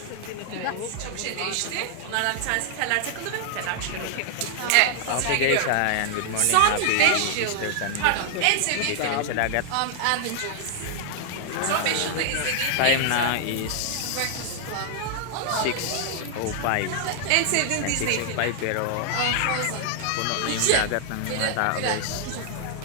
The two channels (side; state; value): both; different; correlation 0.00